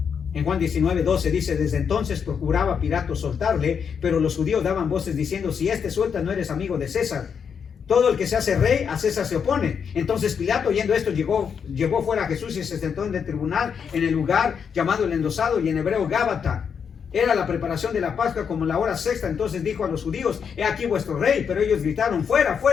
En Juan 19:12 dice: desde entonces procuraba Pilato soltarle, pero los judíos daban voces diciendo: si este suelta, no eres amigo de César. Todo el que se hace rey, a César se opone. Entonces Pilato, oyendo esto, llevó fuera a Jesús y se sentó en el tribunal, en el lugar llamado el Endosado, y en hebreo Gábata. Era la preparación de la Pascua, como la hora sexta. Entonces dijo a los judíos: he aquí vuestro rey. Pero ellos gritaron: fuera,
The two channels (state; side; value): quieter; right; 6.9 dB